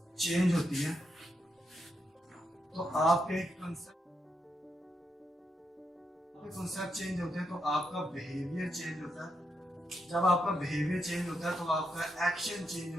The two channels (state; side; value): normal; both; correlation 0.82